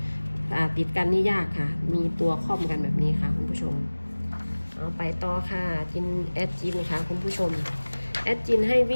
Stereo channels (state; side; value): inverted; both; correlation -1.00